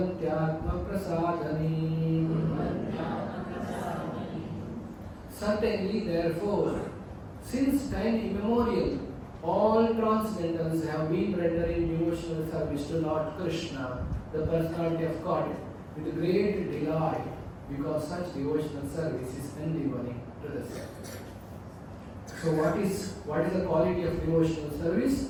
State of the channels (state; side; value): identical; both; correlation 1.00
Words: prasadani. Certainly, therefore, since time immemorial, all transcendentals have been rendering devotional service to Lord Krishna, the personality of God, with great delight, because such devotional service is endeavoring to the self. So what is the quality of devotional